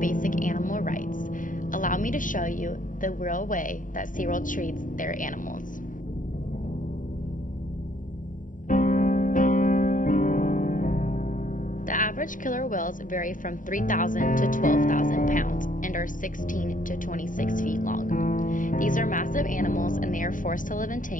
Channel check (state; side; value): late; right; 0.38 ms